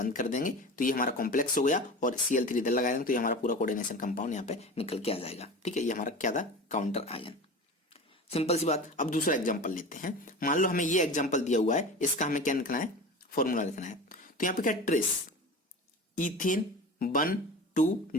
कर देंगे। तो ये हमारा कॉम्प्लेक्स हो गया, और Cl3 इधर लगा देंगे, तो ये हमारा पूरा कोऑर्डिनेशन कंपाउंड यहाँ पे निकल के आ जाएगा, ठीक है। ये हमारा क्या था, काउंटर आयन। सिंपल सी बात। अब दूसरा एग्जांपल लेते हैं। मान लो हमें ये एग्जांपल दिया हुआ है, इसका हमें क्या लिखना है, फॉर्मूला लिखना है। तो यहाँ पे क्या, trace ethane 1,2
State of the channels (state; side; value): normal; both; correlation 0.33